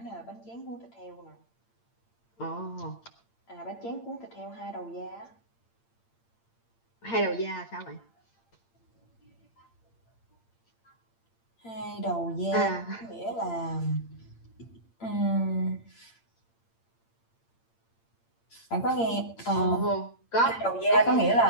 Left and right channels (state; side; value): late; right; 8.8 ms